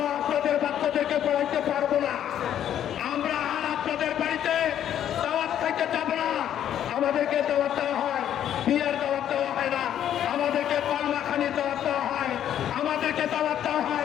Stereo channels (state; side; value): quieter; right; 10.4 dB